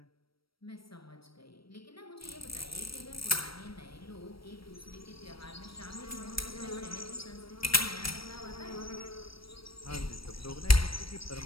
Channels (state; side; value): late; right; 0.75 ms